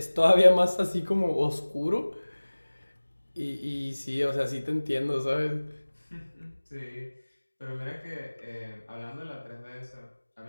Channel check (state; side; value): inverted; both; correlation -1.00